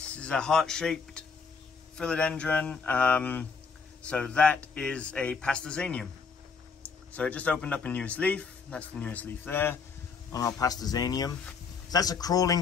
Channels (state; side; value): quieter; right; 5.2 dB